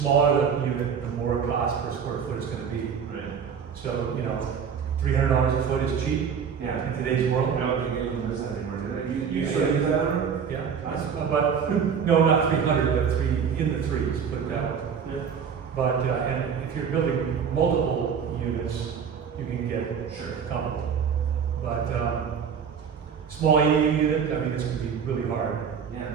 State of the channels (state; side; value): quieter; left; 7.0 dB